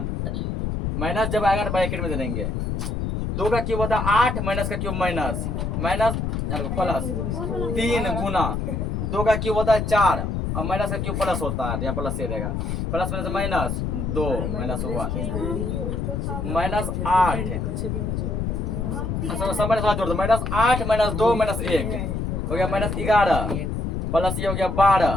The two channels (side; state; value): left; noise; rumble, 2 dB below the sound